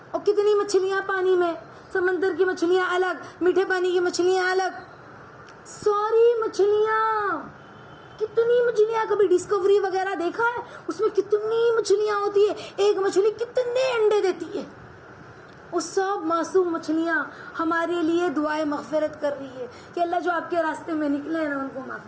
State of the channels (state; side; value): identical; both; correlation 1.00